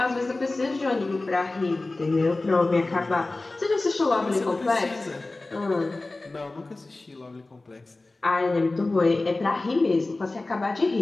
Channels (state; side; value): quieter; right; 3.1 dB